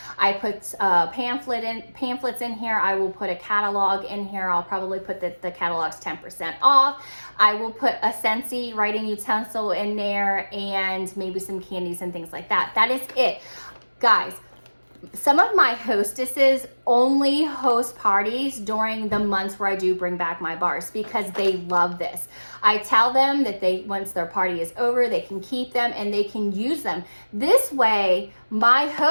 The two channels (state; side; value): inverted; both; correlation -1.00